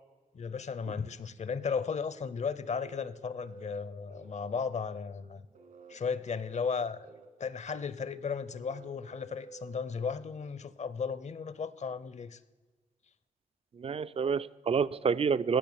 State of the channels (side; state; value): both; normal; correlation 0.47